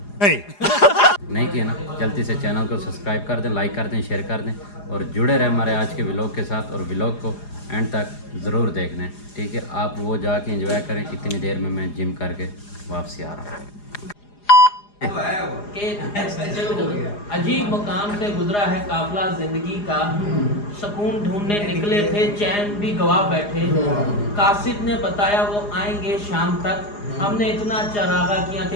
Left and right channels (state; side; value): late; right; 4.9 ms